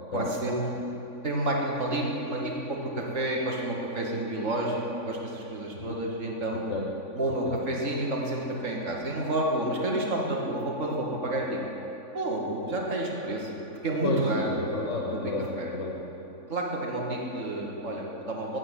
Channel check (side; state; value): right; late; 3.5 ms